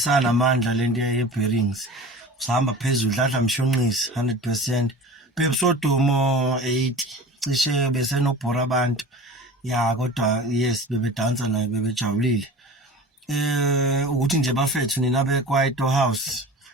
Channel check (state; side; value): normal; both; correlation 0.38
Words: lento ye-bearings usahamba phezulu dladla mshunqisi 100%. Pepsodomo 80 cishe besenobhora abantu. Ya kodwa yes bebedansa naye bebejabulile. Ukuthi nje bafethu nina beKwaito House.